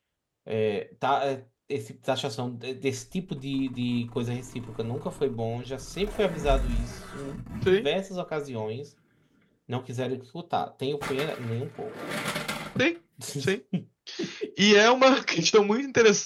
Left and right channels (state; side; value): identical; both; correlation 1.00